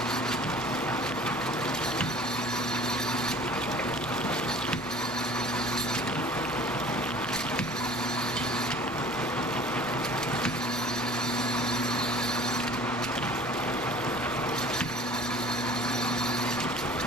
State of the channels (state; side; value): normal; both; correlation 0.46